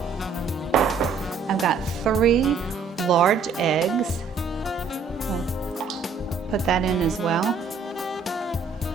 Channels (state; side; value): quieter; left; 5.1 dB